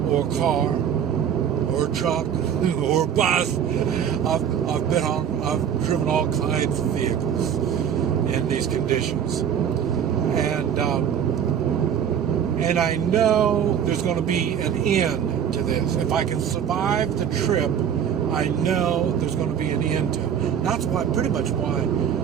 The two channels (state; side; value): quieter; left; 8.6 dB